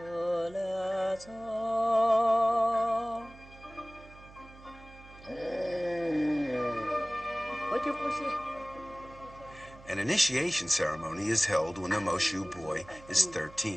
An initiation ceremony is held when the Moshu boy is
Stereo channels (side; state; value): right; noise; hum, 20 dB below the sound